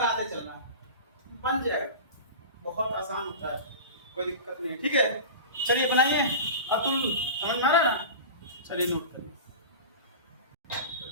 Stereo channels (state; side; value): inverted; both; correlation -0.31